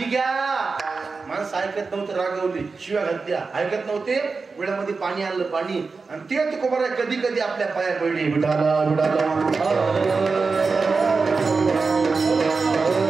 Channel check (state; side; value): quieter; left; 4.4 dB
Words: घ्या. माणसं ऐकत नव्हतं रागवली शिव्या घातल्या ऐकत नव्हते वेळामध्ये पाणी आणलं पाणी आणि ते तुकोबार कधी कधी आपल्या पाया पडली विठाला विठाला